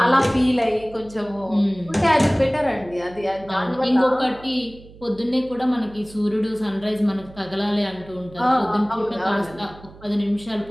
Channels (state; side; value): noise; right; hum, 20 dB below the sound